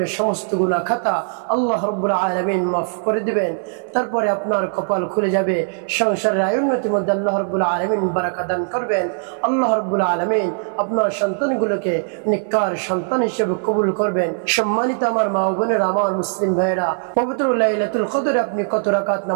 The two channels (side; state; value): left; silent; 62 dB below the other